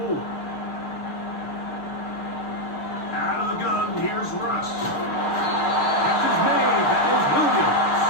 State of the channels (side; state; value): right; late; 6.6 ms